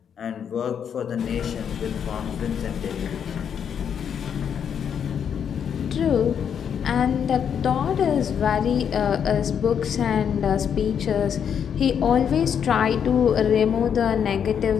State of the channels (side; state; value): right; quieter; 8.0 dB